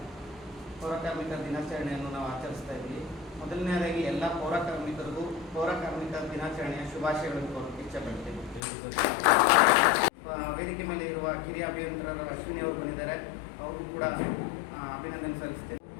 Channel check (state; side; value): drops out; right; at 8.6 s